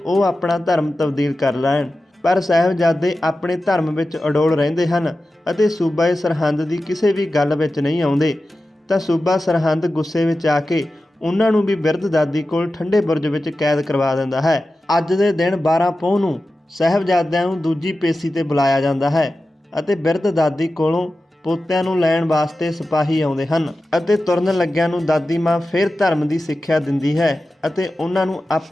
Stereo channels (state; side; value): normal; both; correlation 0.94